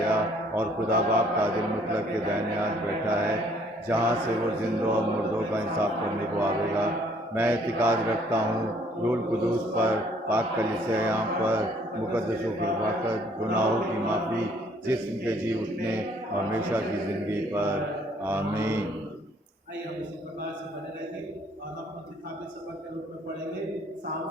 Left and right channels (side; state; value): both; normal; correlation 0.62